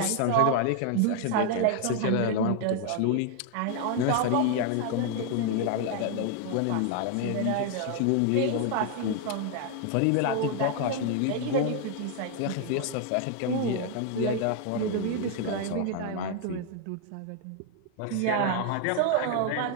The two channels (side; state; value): both; different; correlation 0.00